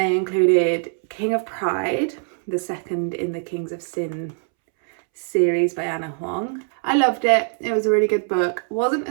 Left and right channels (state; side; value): silent; left; 64 dB below the other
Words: included King of Pride, the second in the Kings of Sin series by Anna Huang. I loved it. It was a really good book. Wasn't